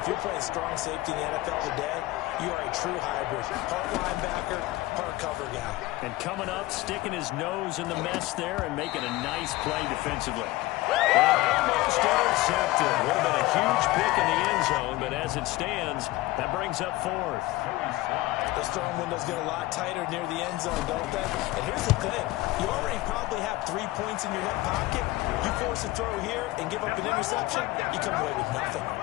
you're playing strong safety in the NFL today, you are a true hybrid. Part linebacker, part cover guy. And coming up, sticking his nose in the mess there and making a nice play defensively. Almost intercepted. Would have been a huge pick in the end zone, but as it stands, that brings up 4th. Those throwing windows get a lot tighter near the end zone, don't they? And here's the thing. You already probably have 3 points in your hip pocket. You force a throw here and give up an interception, you come away with nothing.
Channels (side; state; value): right; quieter; 18.8 dB